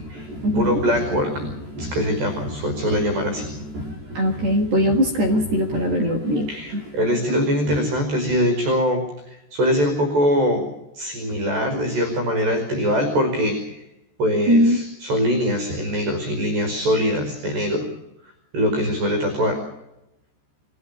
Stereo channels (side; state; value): left; late; 14 ms